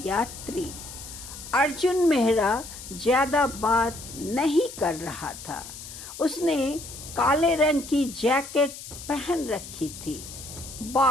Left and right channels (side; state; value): left; noise; hiss, 13 dB below the sound